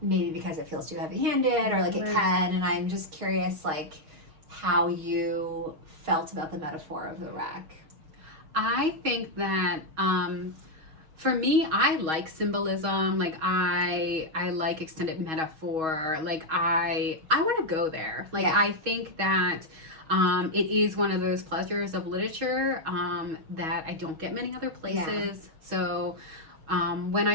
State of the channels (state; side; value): late; left; 6.3 ms